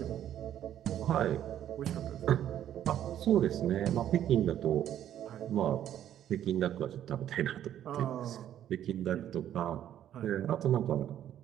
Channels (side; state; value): left; quieter; 11.0 dB